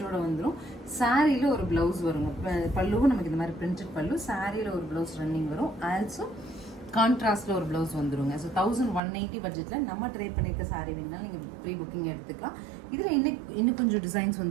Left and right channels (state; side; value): drops out; left; at 9.0 s